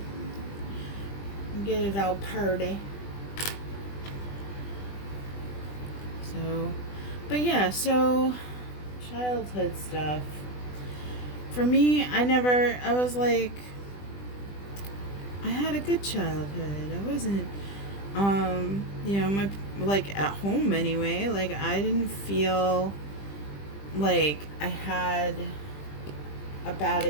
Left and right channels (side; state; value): right; late; 20 ms